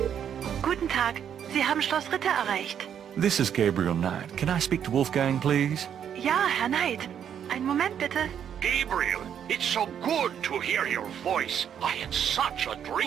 Guten Tag, Sie haben Schloss Ritter erreicht. This is Gabriel Knight. Can I speak to Wolfgang, please? Ja, Herr Knight. Einen Moment bitte. Gabriel, it's so good to hear your voice. I had such a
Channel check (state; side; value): quieter; left; 8.8 dB